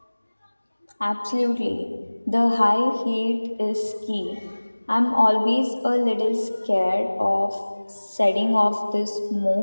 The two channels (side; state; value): both; inverted; correlation -1.00